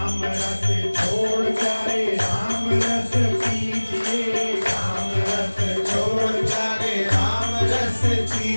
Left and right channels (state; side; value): inverted; both; correlation -1.00